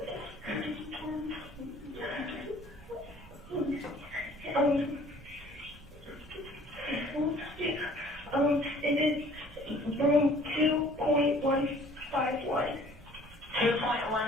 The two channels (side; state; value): right; noise; rumble, 24 dB below the sound